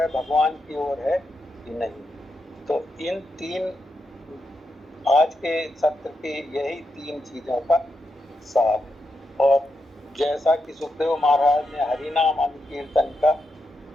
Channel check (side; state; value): both; normal; correlation 0.85